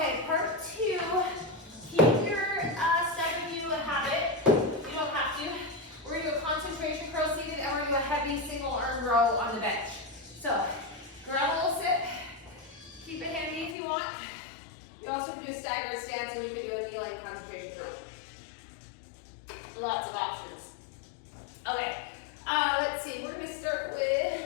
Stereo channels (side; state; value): right; drops out; at 13.8 s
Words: part 2. Keep your step if you have it. You don't have to. We're going to do a concentration curl seated, and we're going to do a heavy single arm row on the bench. So, grab a little sit. Keep it handy if you want. You also can do a staggered stance, and you can do a kneeling concentration curl. Lots of options. Okay, let's see. We're going to start